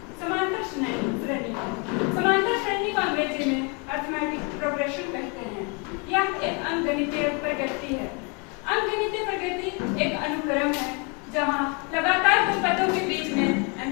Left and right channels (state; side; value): quieter; right; 33.7 dB